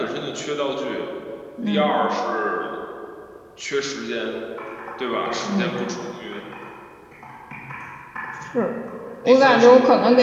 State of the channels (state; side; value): identical; both; correlation 1.00